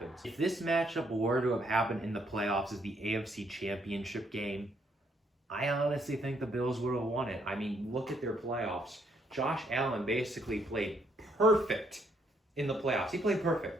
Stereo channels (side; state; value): both; normal; correlation 0.71